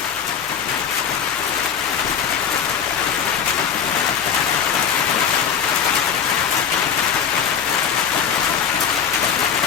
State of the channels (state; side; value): quieter; right; 7.5 dB